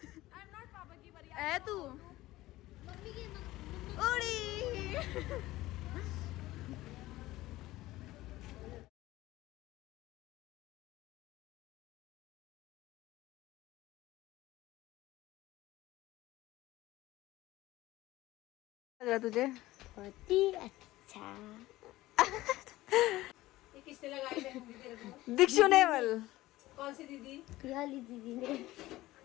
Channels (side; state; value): right; quieter; 17.3 dB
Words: एम नॉट पापा की बारी। है तू मम्मी की उड़ी। लग रहा तुझे? बहुत ही अच्छा। किसने लगाई मेहंदी तेरे को? दीक्षु नेवल। कौन सी दीदी? पियाली दीदी ने